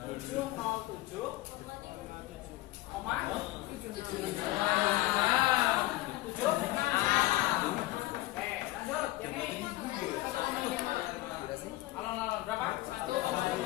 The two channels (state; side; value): quieter; right; 18.0 dB